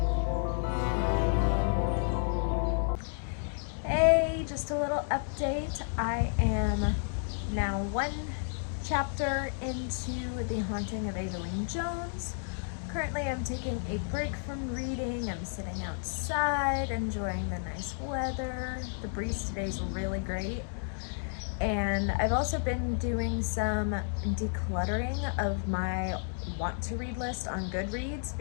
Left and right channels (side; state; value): right; silent; digital silence